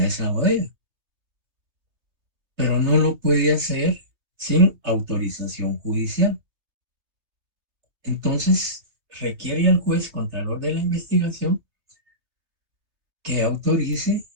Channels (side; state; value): left; late; 3.2 ms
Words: esa bodega, pero no lo puede hacer sin autorización judicial. Entonces, requiere al juez contralor de la investigación que autorice